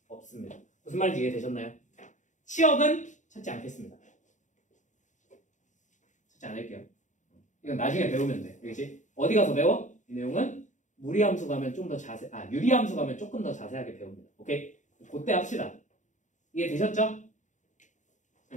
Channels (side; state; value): right; late; 0.36 ms